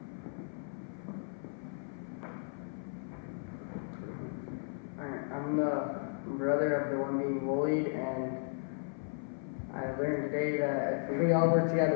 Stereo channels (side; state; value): right; silent; 54 dB below the other